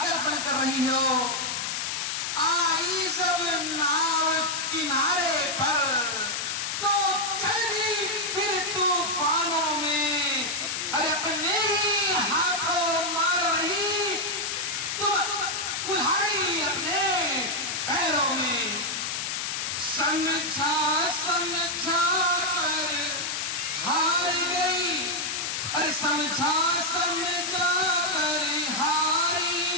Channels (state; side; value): noise; left; hiss, 2 dB below the sound